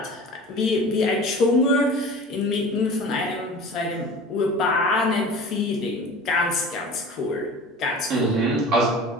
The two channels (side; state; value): both; normal; correlation 0.39